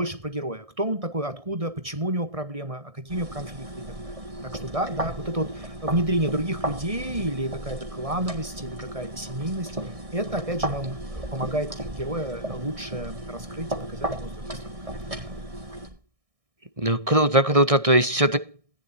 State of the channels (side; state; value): left; late; 1.6 ms